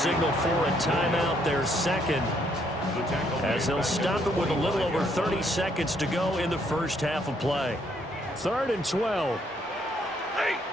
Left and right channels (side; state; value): both; normal; correlation 0.70